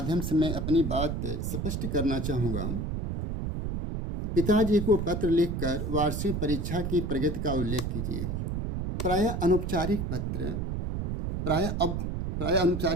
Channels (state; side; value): noise; right; rumble, 2 dB below the sound